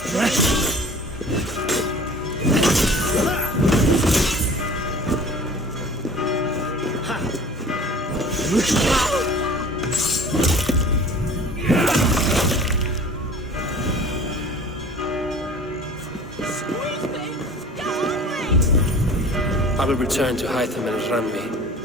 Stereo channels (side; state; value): both; normal; correlation 0.45